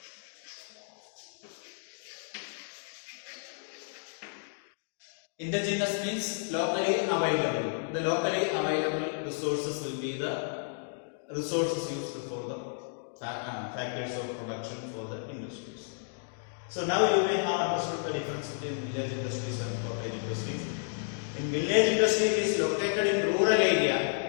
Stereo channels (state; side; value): silent; right; digital silence